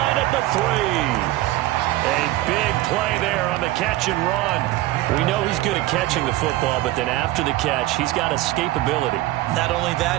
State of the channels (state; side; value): quieter; left; 16.5 dB